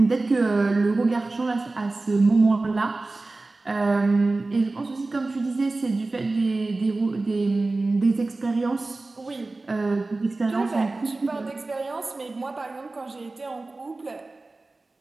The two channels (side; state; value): left; quieter; 3.3 dB